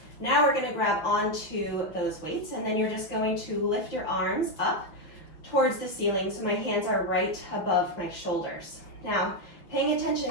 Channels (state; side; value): late; right; 5.3 ms